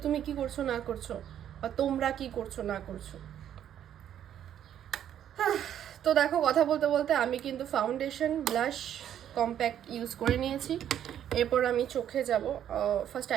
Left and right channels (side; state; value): left; quieter; 10.2 dB